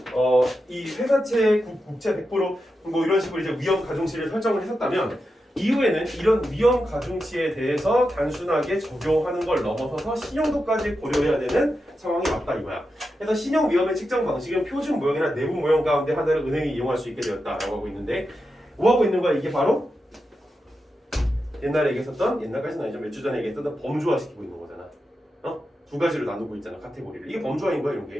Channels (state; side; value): normal; both; correlation 0.89